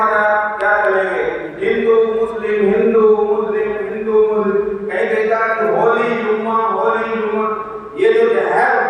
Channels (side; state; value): both; identical; correlation 1.00